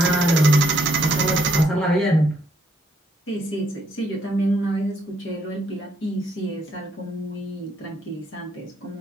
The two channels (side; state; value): both; normal; correlation 0.72